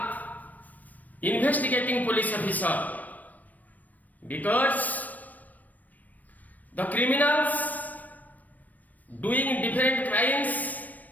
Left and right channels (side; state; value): right; late; 0.079 ms